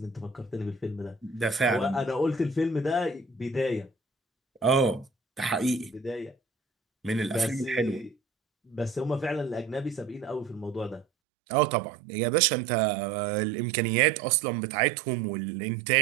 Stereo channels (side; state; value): left; drops out; at 11.1 s